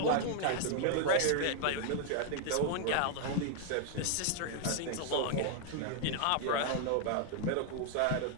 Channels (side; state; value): both; different; correlation 0.00